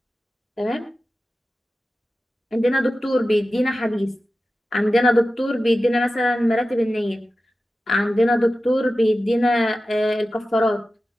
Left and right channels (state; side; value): normal; both; correlation 0.94